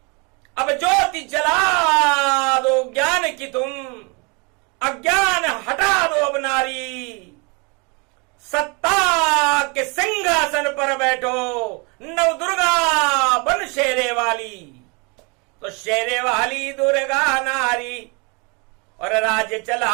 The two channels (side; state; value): left; quieter; 31.0 dB